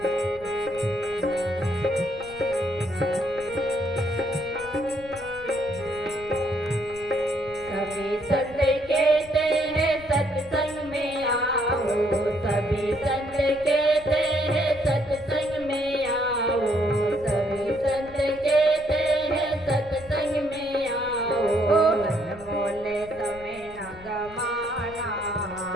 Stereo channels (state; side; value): noise; left; rumble, 20 dB below the sound